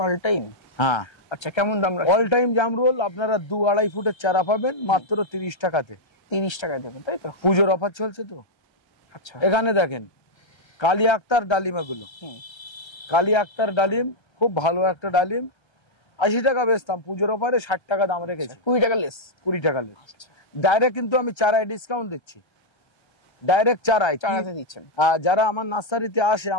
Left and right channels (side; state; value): right; late; 1.3 ms